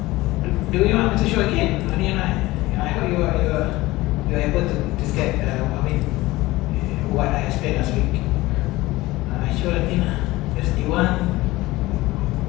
Do you want me to show again? I hope you're able to get what I explained last week. I show again. There's D1.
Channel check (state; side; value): quieter; right; 19.1 dB